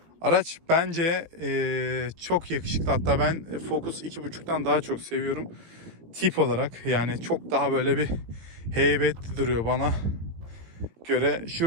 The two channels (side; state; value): left; late; 18 ms